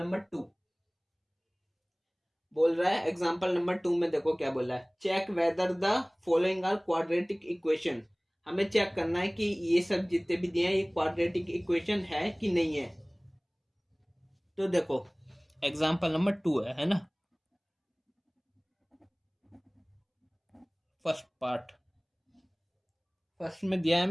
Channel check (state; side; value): identical; both; correlation 1.00